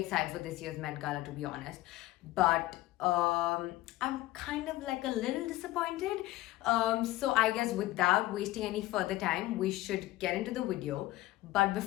for this year's Met Gala, to be honest, but I'm kind of like a little disappointed. So I guess without wasting any further time, we should get into the video. But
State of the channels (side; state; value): right; quieter; 17.2 dB